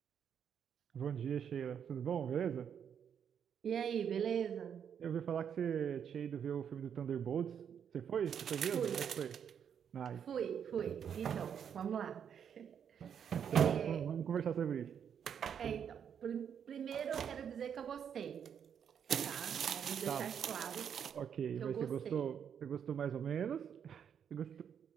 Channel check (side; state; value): left; quieter; 8.0 dB